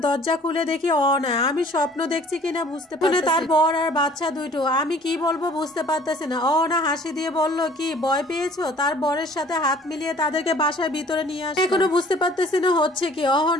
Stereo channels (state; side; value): normal; both; correlation 0.53